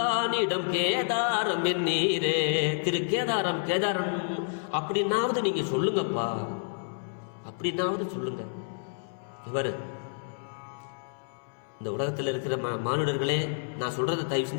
கேதாரம் நீரே. திரு கேதாரம் அப்படின்னாவது நீங்க சொல்லுங்கப்பா, அப்படின்னாவது சொல்லுங்க. இவர் இந்த உலகத்தில் இருக்கிற மானுடர்களே, நான் சொல்றதை தயவு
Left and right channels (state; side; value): silent; right; 58 dB below the other